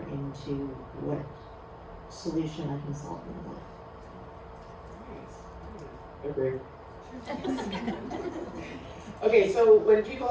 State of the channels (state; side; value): identical; both; correlation 1.00